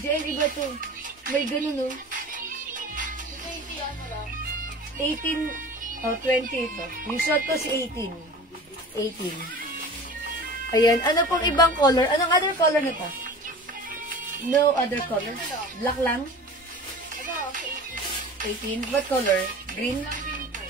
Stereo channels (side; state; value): both; normal; correlation 0.38